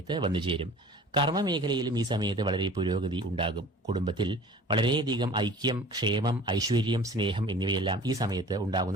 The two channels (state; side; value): normal; both; correlation 0.44